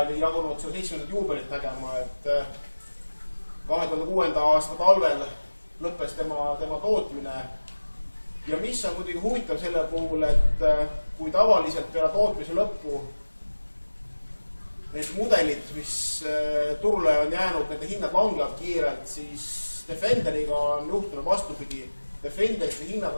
jagunud seda 70. juubelit nägema, et 2006. aasta talvel lõppes tema tootmine. Ja mis on muidugi huvitav selle puhul, et kui tavaliselt peale tootmise lõppu need mudelid, mis turule on jäänud, nende hinnad langevad kiirelt, siis Defenderiga on juhtunud vastupidi. Defenderite hinnad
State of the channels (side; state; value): both; inverted; correlation -1.00